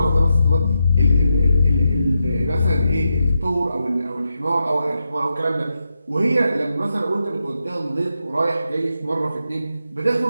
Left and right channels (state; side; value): inverted; both; correlation -0.86